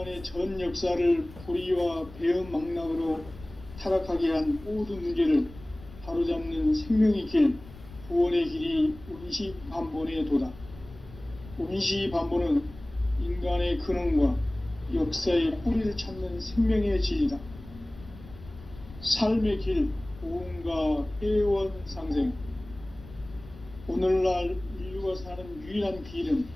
전 역사를 불의와 배응 망락으로 타락하게 한 모든 문제를 바로잡는 생명의 길, 구원의 길이 원시반본의 도다. 원시반본은 인간의 근원과 역사의 뿌리를 찾는 생명의 진리다. 삶의 길, 보험과 회원 상생. 오늘날 인류가 사는 유일한 길은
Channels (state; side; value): noise; left; rumble, 18 dB below the sound